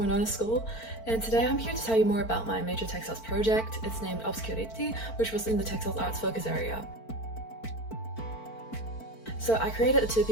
School, and today I'm here to tell you more about my major textiles project. It's named Obscurite, which was in the Textiles Arts focus area. So I created a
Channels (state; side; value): late; right; 4.5 ms